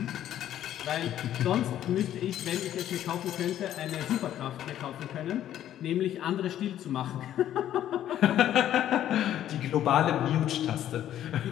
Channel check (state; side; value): quieter; right; 11.6 dB